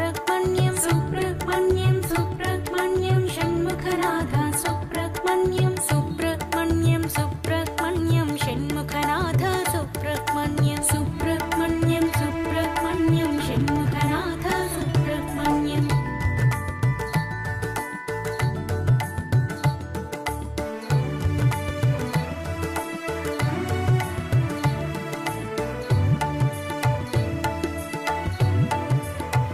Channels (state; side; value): identical; both; correlation 1.00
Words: सुब्रह्मण्यं सुब्रह्मण्यं षण्मुखनाथ सुब्रह्मण्यं सुब्रह्मण्यं सुब्रह्मण्यं षण्मुखनाथ सुब्रह्मण्यं सुब्रह्मण्यं सुब्रह्मण्यं षण्मुखनाथ सुब्रह्मण्यं